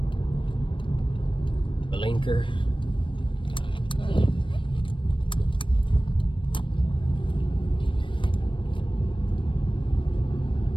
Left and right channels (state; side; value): late; right; 0.25 ms